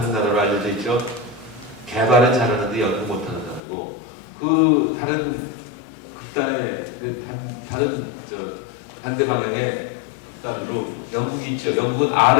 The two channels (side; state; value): right; drops out; at 3.6 s